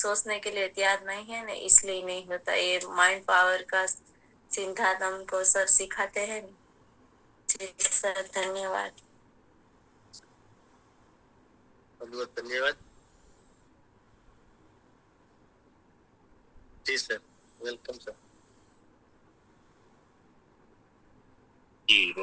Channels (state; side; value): identical; both; correlation 1.00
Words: के लिए तैयार नहीं है ना, इसलिए नहीं होता। ये माइंड पावर का सिद्धांत हमको सर सिखाते हैं। जी सर धन्यवाद। बहुत बहुत धन्यवाद। जी सर, वेलकम सर। जी